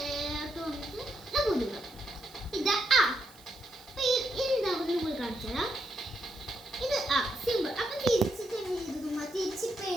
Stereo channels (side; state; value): right; noise; hiss, 23 dB below the sound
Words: ഇത് ആ സിമ്പിൾ. അപ്പൊ തിരിച്ചിട്ട് തിരിച്ചിപ്പോ